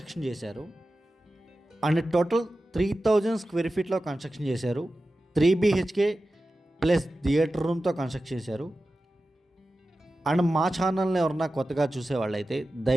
చేశారు. అండ్ టోటల్ 3000 స్క్వేర్ ఫీట్లో కన్స్ట్రక్షన్ చేశారు. 3 BHK ప్లస్ థియేటర్ రూమ్తో కన్స్ట్రక్ట్ చేశారు. అండ్ మా ఛానల్ని ఎవరన్నా కొత్తగా చూసేవాళ్ళైతే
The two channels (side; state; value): both; normal; correlation 0.94